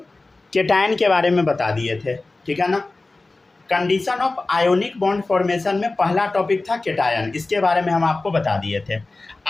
केटायन के बारे में बता दिए थे, ठीक है ना। Condition of ionic bond formation में पहला टॉपिक था केटायन, इसके बारे में हम आपको बता दिए थे।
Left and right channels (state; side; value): quieter; right; 3.3 dB